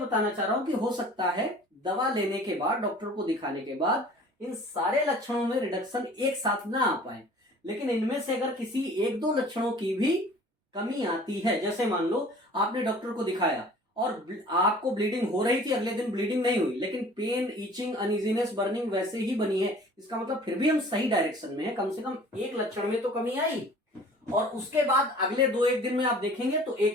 चाह रहा हूं कि हो सकता है दवा लेने के बाद, डॉक्टर को दिखाने के बाद इन सारे लक्षणों में रिडक्शन एक साथ ना आ पाए, लेकिन इनमें से अगर किसी एक दो लक्षणों की भी कमी आती है, जैसे मान लो आपने डॉक्टर को दिखाया और आपको ब्लीडिंग हो रही थी, अगले दिन ब्लीडिंग नहीं हुई, लेकिन पेन, ईचिंग, अनइजीनेस, बर्निंग वैसे ही बनी है, इसका मतलब फिर भी हम सही डायरेक्शन में है, कम से कम एक लक्षण में तो कमी आई। और उसके बाद अगले दो एक दिन में आप देखेंगे तो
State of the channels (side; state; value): both; normal; correlation 0.48